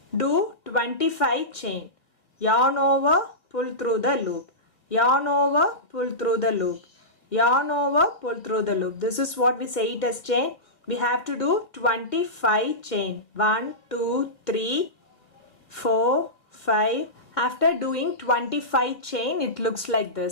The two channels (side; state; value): right; late; 2.5 ms